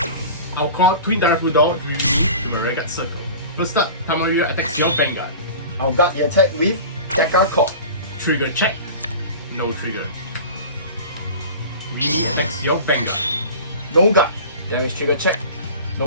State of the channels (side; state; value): both; inverted; correlation -0.36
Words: I'll call Twin Direful Doll Rimi to my rearguard circle. First up, Tamayura attacks your Vanguard. I'll guard the attack with Deca Cord. Trigger check. No trigger. Rimi attacks your Vanguard. No guard. Damage trigger check.